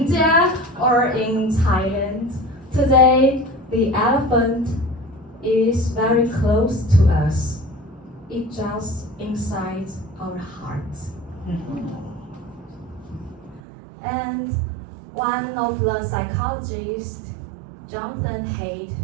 or in Thailand. Today the elephant is very close to us. It's just inside our hearts. And one of the psychologists, Jonathan Haidt,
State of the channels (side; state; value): left; drops out; at 13.6 s